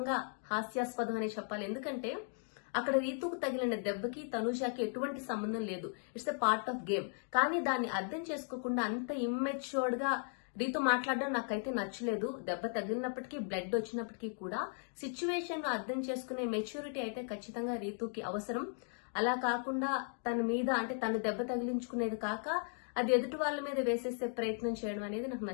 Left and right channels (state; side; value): silent; right; 53 dB below the other